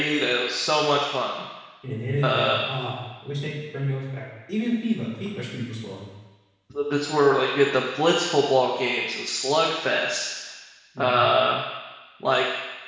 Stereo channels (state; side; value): identical; both; correlation 1.00